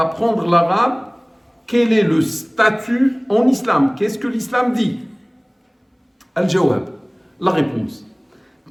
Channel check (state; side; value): identical; both; correlation 1.00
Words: l'arabe, quel est le statut en islam? Qu'est-ce que l'islam dit? Al-Jawab, la réponse.